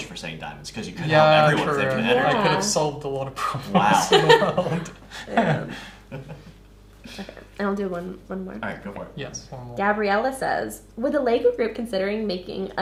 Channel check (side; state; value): both; identical; correlation 1.00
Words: for saying diamonds because you could yeah, help everyone true. with infinite Yeah. energy. I could have solved a lot of problems Wow. in the world. Yeah. Okay. And I'll do one more. All right, go for it. Yes, one more. Gabriella says, with the Lego group considering making